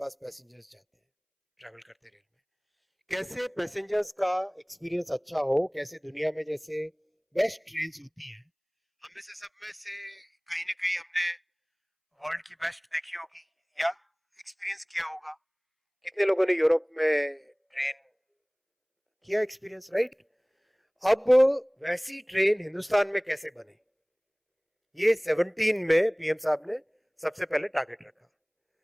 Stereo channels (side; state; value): both; identical; correlation 1.00